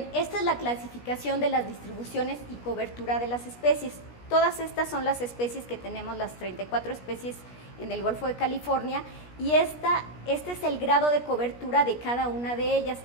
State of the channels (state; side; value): late; right; 17 ms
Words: esta es la clasificación de las distribuciones y cobertura de las especies. Todas estas son las especies que tenemos, las 34 especies en el Golfo de California, y este es el grado de cobertura de cada una de ellas.